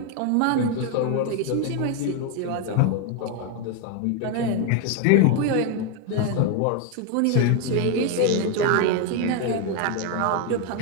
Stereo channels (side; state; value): both; different; correlation 0.01